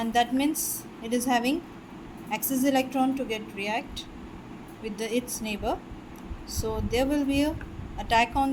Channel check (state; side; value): identical; both; correlation 1.00